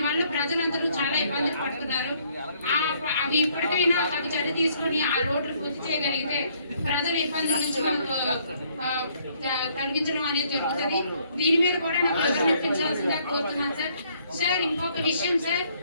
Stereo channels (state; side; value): inverted; both; correlation -0.66